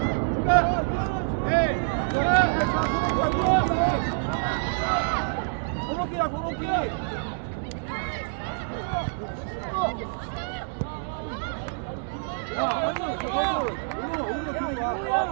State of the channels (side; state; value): left; silent; digital silence